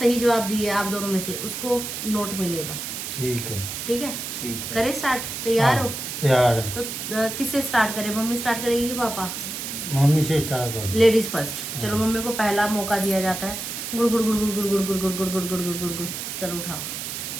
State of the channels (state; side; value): noise; right; hiss, 6 dB below the sound